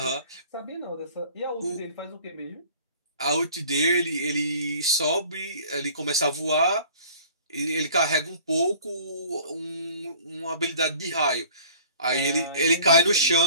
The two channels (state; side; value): inverted; both; correlation -0.48